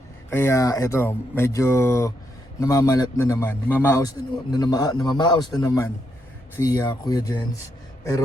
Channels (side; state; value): both; normal; correlation 0.79